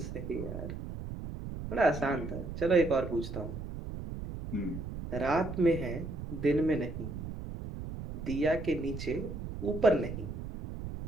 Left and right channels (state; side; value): noise; right; rumble, 7 dB below the sound